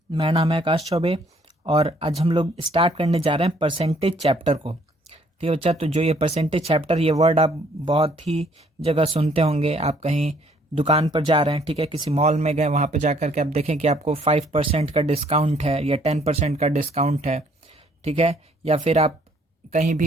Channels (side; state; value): both; normal; correlation 0.63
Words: मेरा नाम है आकाश चौबे और आज हम लोग स्टार्ट करने जा रहे हैं परसेंटेज चैप्टर को। ठीक है बच्चा, तो जो ये परसेंटेज चैप्टर, ये वर्ड आप बहुत ही जगह सुनते होंगे। आप कहीं दुकान पर जा रहे हैं, ठीक है, किसी मॉल में गए, वहाँ पर जा कर के आप देखें कि आपको 5% का डिस्काउंट है या 10% का डिस्काउंट है, ठीक है। या फिर आप कहीं